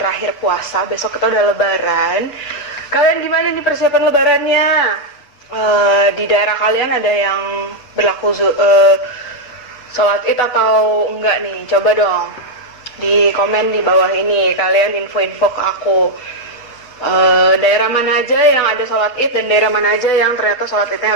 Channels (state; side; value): late; right; 8.1 ms